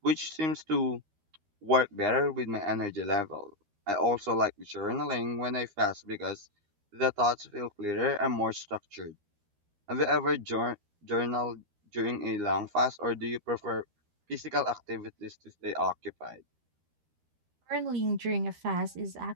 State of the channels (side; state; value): left; late; 13 ms